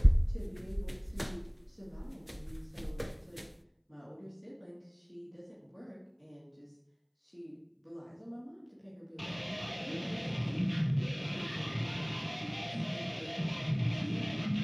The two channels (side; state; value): both; identical; correlation 1.00